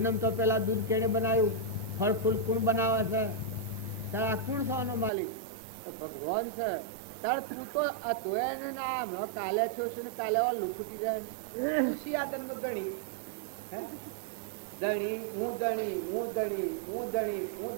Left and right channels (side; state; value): left; drops out; at 5.1 s